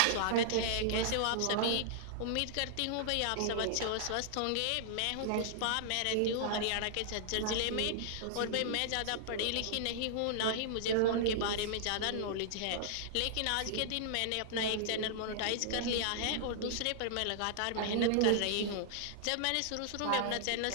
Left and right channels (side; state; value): both; different; correlation -0.01